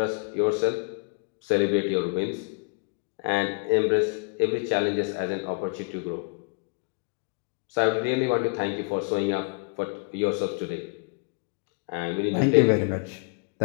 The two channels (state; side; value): quieter; right; 34.4 dB